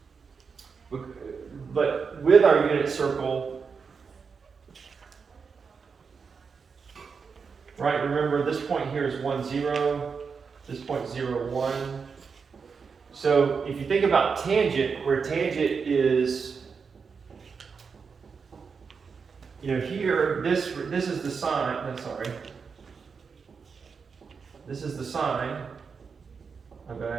But with our unit circle, right, remember this point here is 1, 0, this point 0, 1. So if you think about tangent, where tangent is, here, this is the sine, this is the sine of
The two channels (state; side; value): quieter; left; 5.6 dB